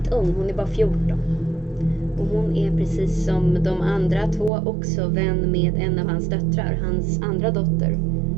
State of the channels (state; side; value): drops out; left; at 4.5 s